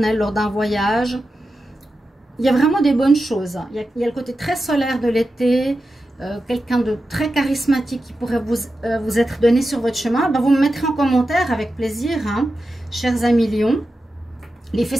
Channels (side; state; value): both; normal; correlation 0.91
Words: lors d'un voyage. Il y a vraiment des bonnes choses. Il y a le côté très solaire de l'été. Quelqu'un de très charismatique qui pourrait vous être donné sur votre chemin, ben vous me mettrez en commentaire avec plaisir, hein, chers amis lions. Les